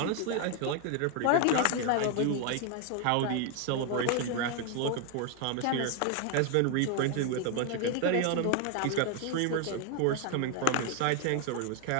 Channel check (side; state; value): both; different; correlation 0.01